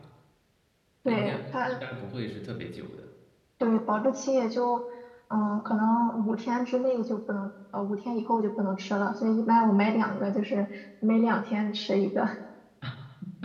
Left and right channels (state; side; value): identical; both; correlation 1.00